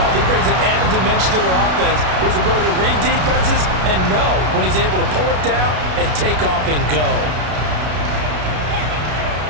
He brings an added dimension to their offense with his ability to read defenses and know when he's able to pull it down and take off and go.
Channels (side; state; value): left; late; 33 ms